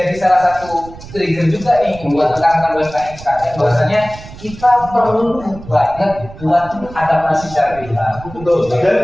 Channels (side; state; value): right; noise; rumble, 16 dB below the sound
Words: salah satu trigger juga nih buat rekan-rekan UMKM sekarang. Bahwasanya kita perlu banget buat adaptasi secara digital. Betul.